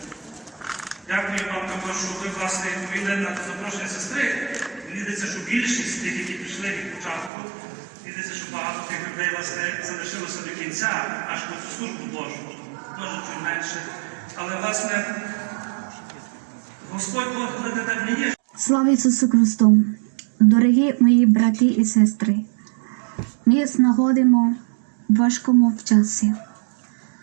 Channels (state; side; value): drops out; left; at 7.3 s